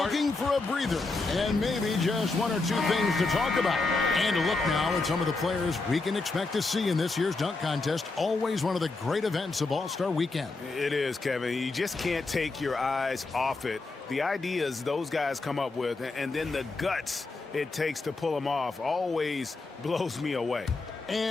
for a breather and maybe just 1 or 2 things to talk about. And a look now at some of the players we can expect to see in this year's dunk contest. Always one of the great events of All-Star Weekend. It is, Kevin. You just can't take your eyes off it. The ideas those guys come up with and then the guts it takes to pull them off always blows me away.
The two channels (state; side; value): quieter; right; 3.6 dB